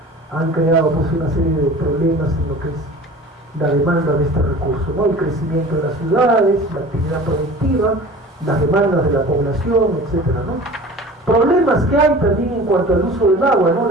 han creado pues una serie de problemas en lo que es la demanda de este recurso, ¿no? El crecimiento de las ciudades, la actividad productiva, las demandas de la población, etcétera, ¿no? Problemas que hay también en cuanto al uso del agua, ¿no?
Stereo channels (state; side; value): normal; both; correlation 0.41